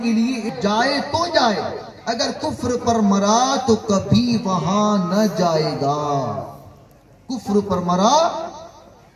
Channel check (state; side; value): identical; both; correlation 1.00